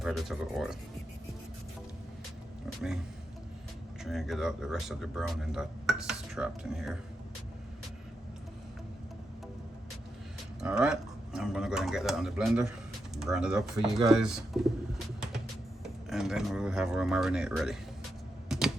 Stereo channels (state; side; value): normal; both; correlation 0.85